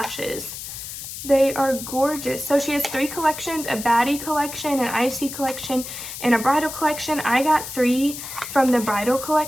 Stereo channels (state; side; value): noise; left; hiss, 9 dB below the sound